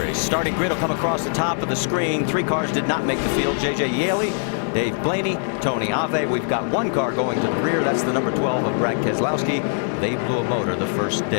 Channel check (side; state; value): right; silent; 56 dB below the other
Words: Starting grid will come across the top of the screen. 3 cars did not make the field. J.J. Yaley, Dave Blaney, Tony Ave. We've got 1 car going to the rear. That's the number 12 of Brad Keselowski. They blew a motor the first